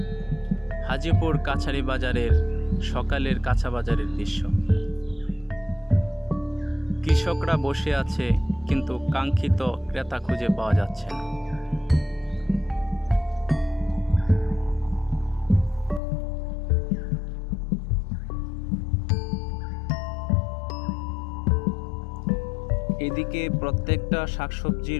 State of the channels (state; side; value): drops out; right; at 16.0 s